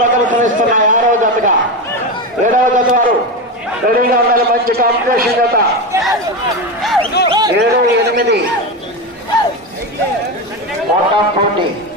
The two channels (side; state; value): both; normal; correlation 0.17